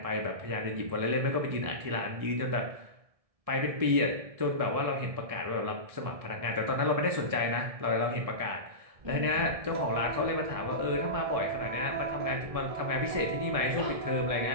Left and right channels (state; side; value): late; left; 1.7 ms